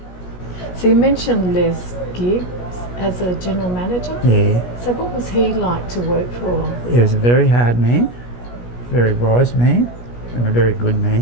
So you mentioned Les Gibbs as a general manager? Yeah. So what was he like to work for? He was a very hard man, very wise man, and a very good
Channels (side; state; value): right; late; 17 ms